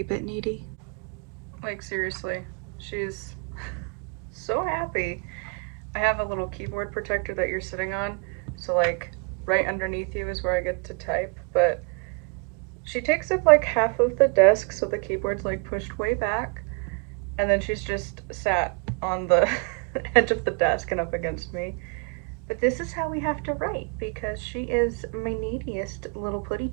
bit needy. Like, seriously, she's so happy. I have a little keyboard protector that you're sitting on, so like right underneath you is where I get to type, but she takes up like half of the desk, so the keyboard's like pushed way back, and then she's just sat on the edge of the desk and up against me. But this is how we have to write, because she is my neediest little putty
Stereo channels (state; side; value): quieter; left; 33.5 dB